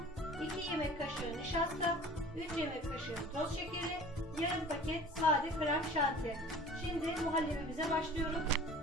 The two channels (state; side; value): normal; both; correlation 0.44